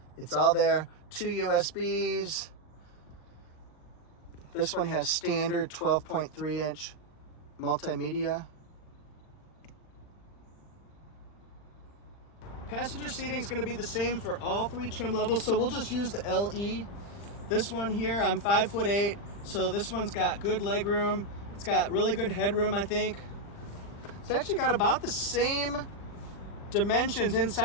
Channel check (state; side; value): late; right; 40 ms